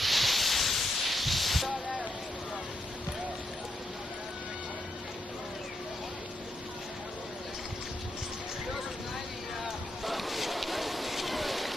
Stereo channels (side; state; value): both; normal; correlation 0.81